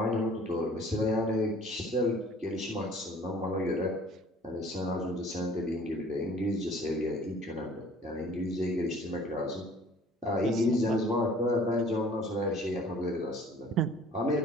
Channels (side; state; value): both; normal; correlation 0.52